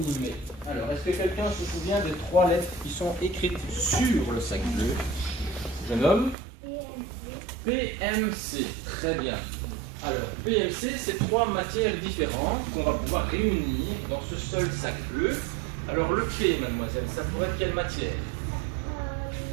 met. Alors, est-ce que quelqu'un se souvient des 3 lettres qui sont écrites sur le sac bleu? Jeune homme? PMC. Très bien. Alors, PMC, c'est 3 matières différentes qu'on va pouvoir réunir dans ce seul sac bleu. Alors, le P, mademoiselle, ça pourrait être quelle matière?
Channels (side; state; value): left; drops out; at 6.4 s